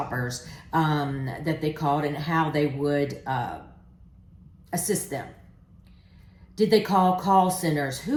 that they called, and how they would assist them. Did they call call centers?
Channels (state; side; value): identical; both; correlation 1.00